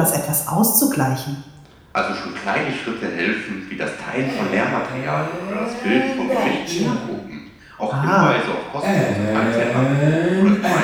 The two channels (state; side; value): identical; both; correlation 1.00